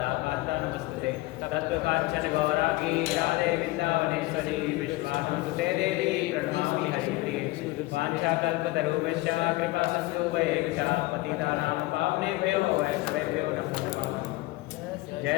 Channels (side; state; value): right; quieter; 19.7 dB